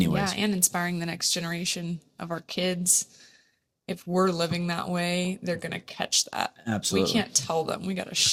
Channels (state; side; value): identical; both; correlation 1.00